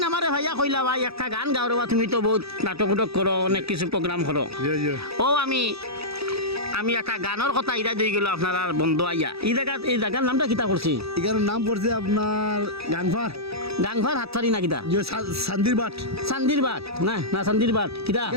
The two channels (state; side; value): late; left; 0.77 ms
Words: না আমারে ভাইয়া কইলা ভাই একটা গান গাও রে, তুমি তো বহুত নাটক উটক করো, অনেক কিছু প্রোগ্রাম করো। ও আমি একটা গানের কথা ইরা দিয়ে গেল আপনার আর বন্ধু আইয়া। এই জায়গার নামটা কিতা করছি? এখানে নাম পড়ছে আপনার গাংফার গাংফার হাতফারি না কিতা? সান্দির বাট। চান্দির বাট না চান্দির বাট কিতা